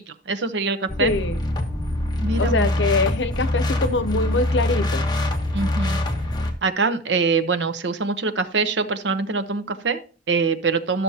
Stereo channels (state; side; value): normal; both; correlation 0.31